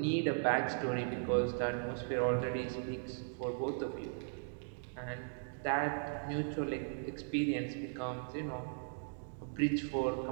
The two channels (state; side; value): silent; left; digital silence